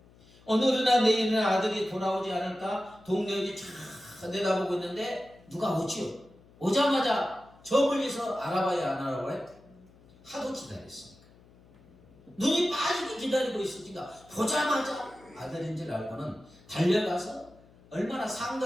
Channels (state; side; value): noise; left; hum, 26 dB below the sound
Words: 오늘이나 내일이나 아들이 돌아오지 않을까 동료들이 쫙 내다보고 있는데 누가 오지요. 오자마자 저 멀리서 알아봐야 안 알아봐요? 하도 기다렸으니까. 눈이 빠지게 기다리고 있으니까 보자마자 아들인 줄 알고는 달려가서 얼마나